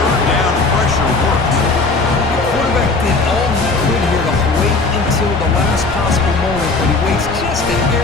down pressure works. The quarterback did all he could here to wait until the last possible moment, but he waits just a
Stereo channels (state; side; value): quieter; right; 3.8 dB